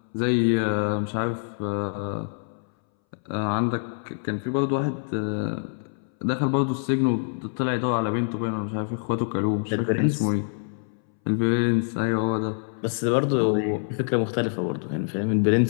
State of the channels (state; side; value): silent; right; 61 dB below the other